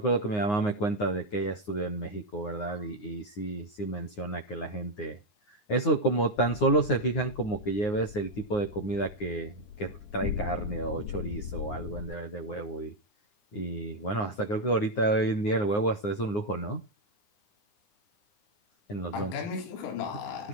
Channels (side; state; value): right; late; 9.6 ms